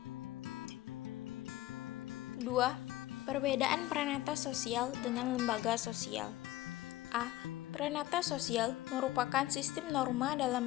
2. Perbedaan pranata sosial dengan lembaga sosial. A. Pranata sosial merupakan sistem norma dalam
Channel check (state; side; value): quieter; right; 16.1 dB